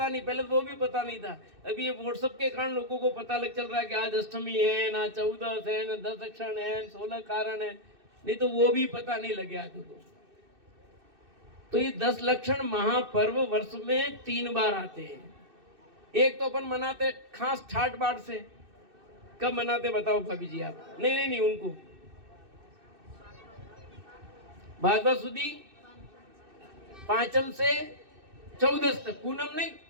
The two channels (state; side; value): late; left; 2.6 ms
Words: नहीं, पहले वो भी पता नहीं था। अभी ये व्हाट्सएप के कारण लोगों को पता लग चल रहा है कि आज अष्टमी है ना, 14 है ना, 10 लक्षण है, 16 कारण है, नहीं तो वो भी पता नहीं लगे आज को। तो ये 10 लक्षण महापर्व वर्ष में 3 बार आते हैं। एक तो अपन मनाते खास ठाट बाट से। कब मनाते बताओ भाभी जी आप? नहीं उनको भादवा सुदी पांचम से चौदस तक, पूनम नहीं